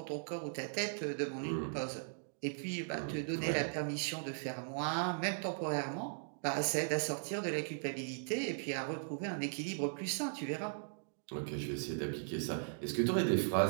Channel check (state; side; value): silent; left; digital silence